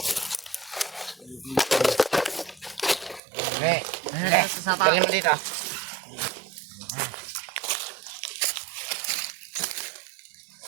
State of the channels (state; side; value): drops out; left; at 3.2 s